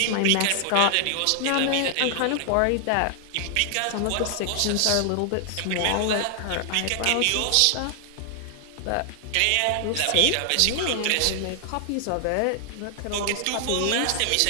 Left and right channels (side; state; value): both; different; correlation 0.00